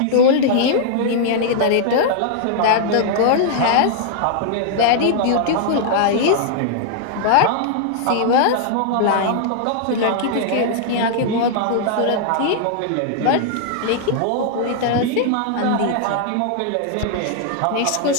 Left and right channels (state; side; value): different; both; correlation -0.01